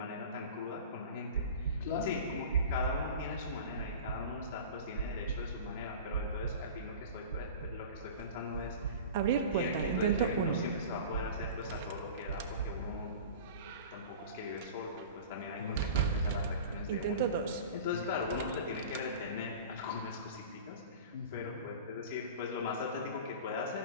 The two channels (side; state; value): both; inverted; correlation -0.36